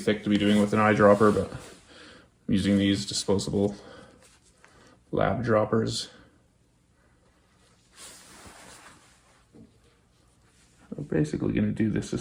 to be doing with an eyedropper, but I'm using these disposable lab droppers. I'm basically going to do this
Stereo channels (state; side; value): identical; both; correlation 1.00